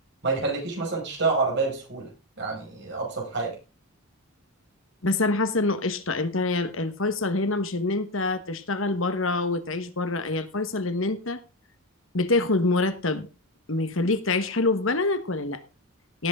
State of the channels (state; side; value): normal; both; correlation 0.10